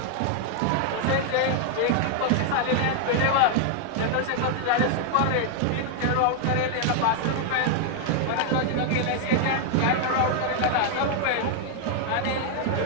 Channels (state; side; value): different; both; correlation 0.00